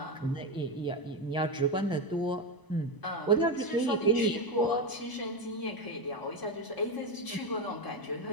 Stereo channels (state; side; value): late; right; 1.0 ms